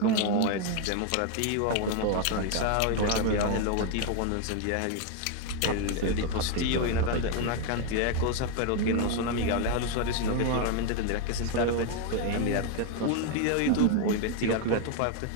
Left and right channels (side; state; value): both; different; correlation 0.01